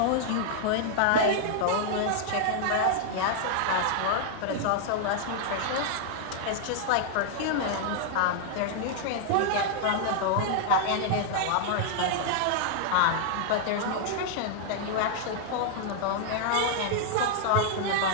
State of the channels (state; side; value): different; both; correlation -0.01